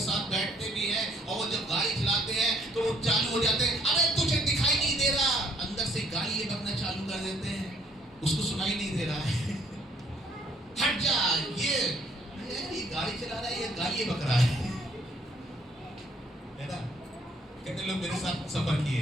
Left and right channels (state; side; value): normal; both; correlation 0.63